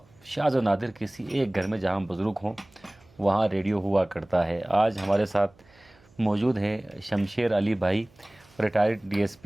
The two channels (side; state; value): right; noise; hum, 29 dB below the sound